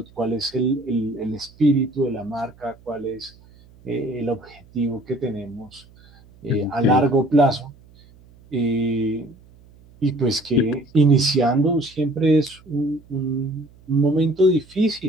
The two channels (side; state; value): right; noise; hum, 26 dB below the sound